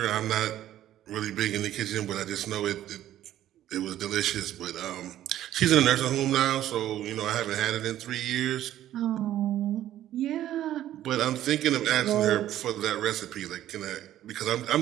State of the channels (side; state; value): left; quieter; 12.6 dB